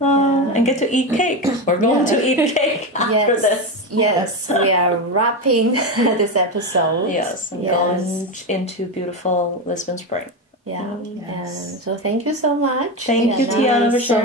get to eat cake. We're going to eat cake after this. Yes, we are wrapping this episode. And going into beautiful Lisbon spring. And so thank you so much. Thank you, Tianna, for sharing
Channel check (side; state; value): both; normal; correlation 0.16